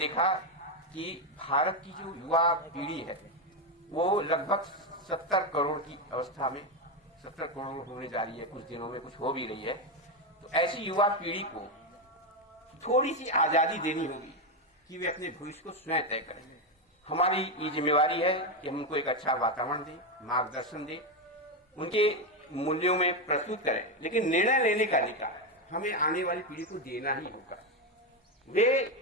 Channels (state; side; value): normal; both; correlation 0.08